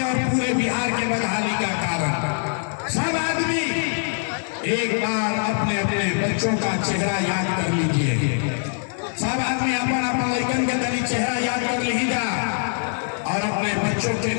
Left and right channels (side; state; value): right; silent; digital silence